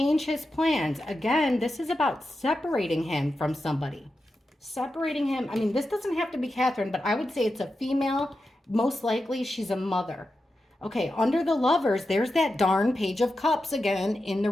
his plans. Again, this is about separating him from somebody. Separating him. I mean, this doesn't have to be Catherine, but I would say it's a female. Most likely she's a mother. Okay, under the Lovers, there's that darn Page of Cups again in the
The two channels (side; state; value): both; normal; correlation 0.90